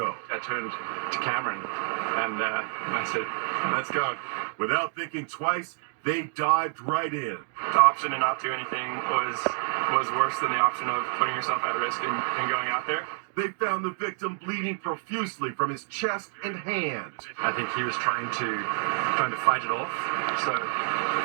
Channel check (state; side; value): silent; left; 59 dB below the other